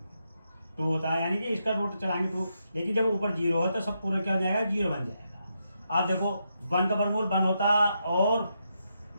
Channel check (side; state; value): both; inverted; correlation -0.82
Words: 2 होता है, यानी कि इसका रूट चलाएंगे 2, लेकिन जब ऊपर 0 हो तो सब पूरा क्या हो जाएगा, 0 बन जाएगा। अब देखो 1 का वर्गमूल 1 होता और